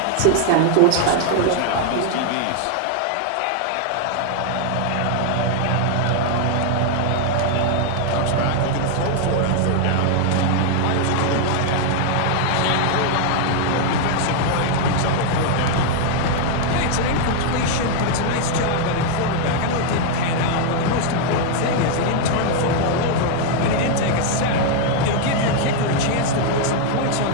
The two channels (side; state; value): both; different; correlation 0.00